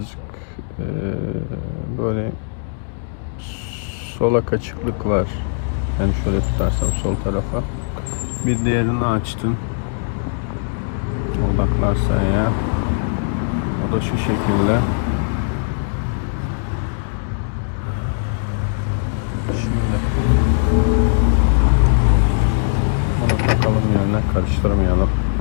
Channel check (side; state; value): right; silent; digital silence